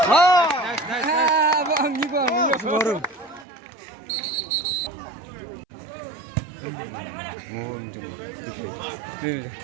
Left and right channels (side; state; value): left; drops out; at 3.5 s